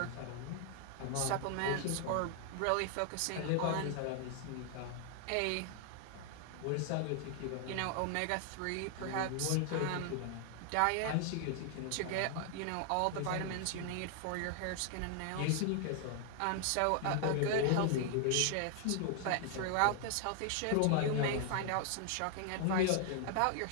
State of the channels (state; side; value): different; both; correlation 0.00